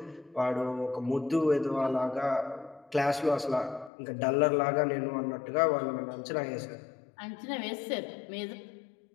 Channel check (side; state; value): right; drops out; at 3.9 s